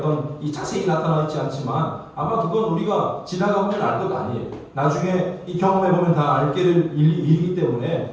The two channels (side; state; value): both; identical; correlation 1.00